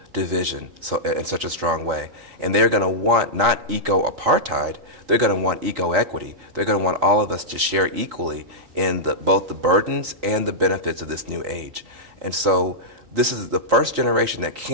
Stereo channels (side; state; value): left; late; 3.8 ms